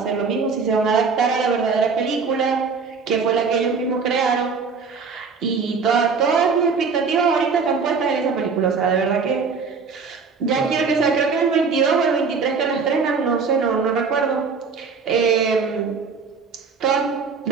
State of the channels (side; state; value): left; quieter; 5.2 dB